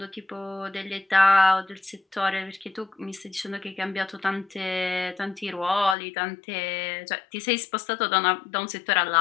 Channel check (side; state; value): right; drops out; at 6.0 s